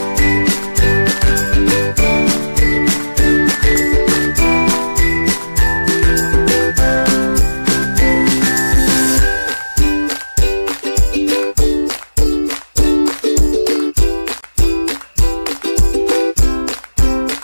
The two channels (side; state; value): both; inverted; correlation -1.00